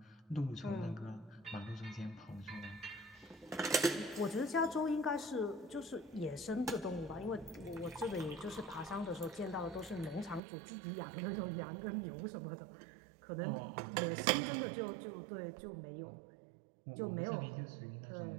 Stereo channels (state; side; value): drops out; left; at 10.4 s